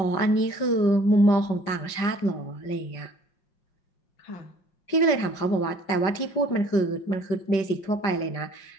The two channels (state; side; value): late; right; 5.1 ms